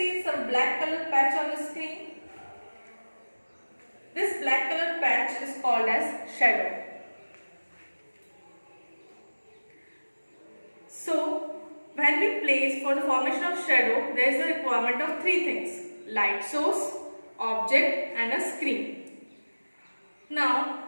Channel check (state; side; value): inverted; both; correlation -1.00